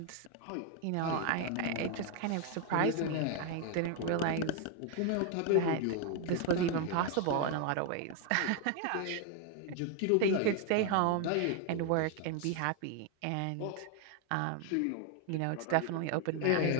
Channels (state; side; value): different; both; correlation 0.01